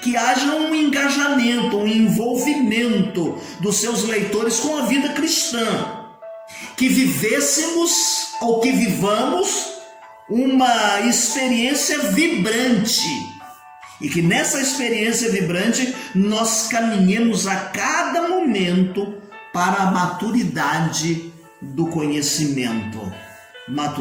Que haja um engajamento, um envolvimento dos seus leitores com a vida cristã, que vivêssemos ou que vivamos uma experiência vibrante e que nessa experiência vibrante nós caminhemos a cada momento para a maturidade do conhecimento.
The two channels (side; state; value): both; identical; correlation 1.00